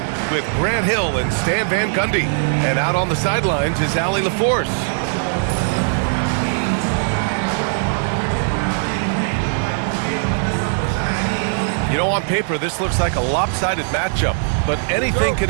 with Grant Hill and Stan Van Gundy. And out on the sidelines is Allie LaForce. You know, on paper, this looks like a lopsided matchup, but anything can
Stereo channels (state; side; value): silent; left; digital silence